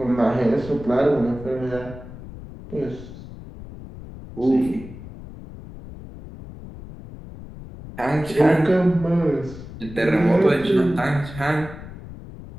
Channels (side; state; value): left; noise; rumble, 14 dB below the sound